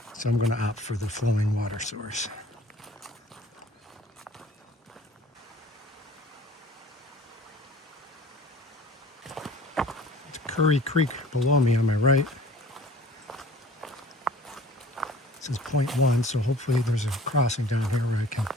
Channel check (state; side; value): normal; both; correlation 0.48